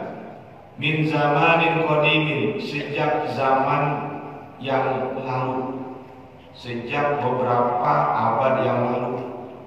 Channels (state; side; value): identical; both; correlation 1.00